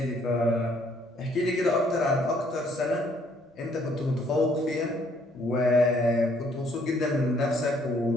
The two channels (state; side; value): normal; both; correlation 0.65